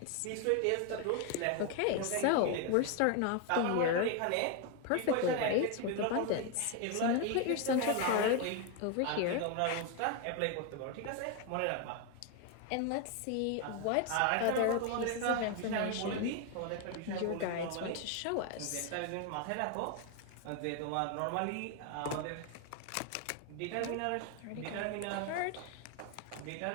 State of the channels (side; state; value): both; different; correlation 0.01